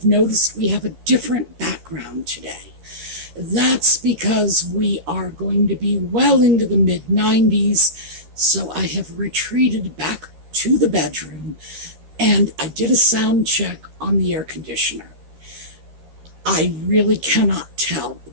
noticed we have a different background today. That's because we are going to be well into the mid-90s, so I have retreated back to the bedroom, and I did a sound check on the air conditioner. I really cannot tell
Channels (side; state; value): left; late; 13 ms